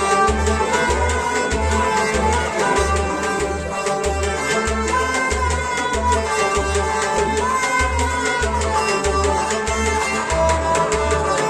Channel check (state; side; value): identical; both; correlation 1.00